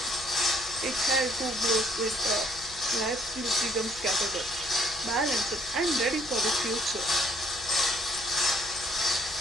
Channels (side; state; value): left; noise; hum, 20 dB below the sound